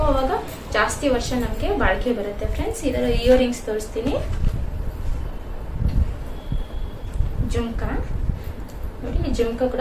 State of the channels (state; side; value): identical; both; correlation 1.00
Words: ಅವಾಗ ಜಾಸ್ತಿ ವರ್ಷ ನಮಗೆ ಬಾಳಿಕೆ ಬರುತ್ತೆ ಫ್ರೆಂಡ್ಸ್. ಇದರ ಇಯರಿಂಗ್ಸ್ ತೋರಿಸ್ತೀನಿ. ಜುಮ್ಕಾ ನೋಡಿ, ಈ ಜುಮ್ಕಾ